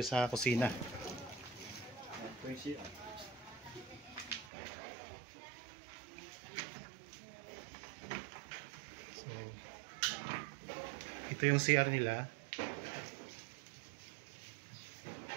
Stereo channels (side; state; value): left; drops out; at 4.5 s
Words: sa kusina. Ito yung CR nila.